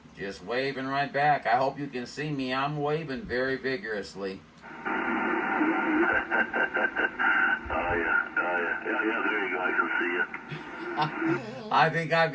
Just waving right back. I hope you can see me. I'm waving very vigorously. Oh, yeah. Yeah, there you go. I can see you. I think I've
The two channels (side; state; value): both; identical; correlation 1.00